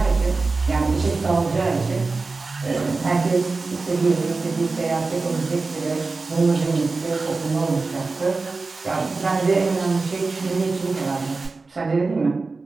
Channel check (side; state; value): left; quieter; 3.9 dB